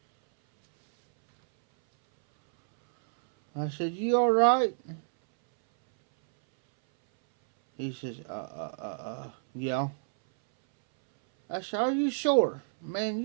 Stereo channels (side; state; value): left; silent; 59 dB below the other